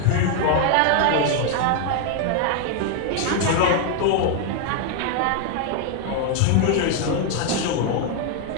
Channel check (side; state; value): both; different; correlation 0.00